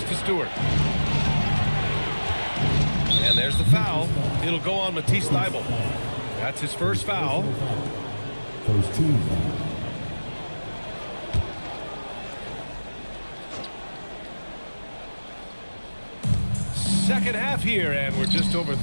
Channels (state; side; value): inverted; both; correlation -1.00